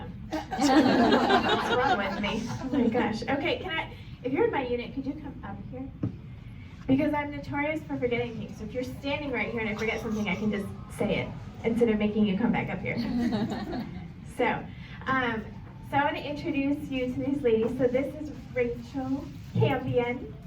What's wrong with me? Oh my gosh. Okay, if you're in my unit, could you come up here? Because I'm notorious for forgetting things. So if you're standing right here and I forget something, I can just say it instead of making you come back up here. So I want to introduce you to these ladies. So this is Rachel Campion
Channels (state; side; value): identical; both; correlation 1.00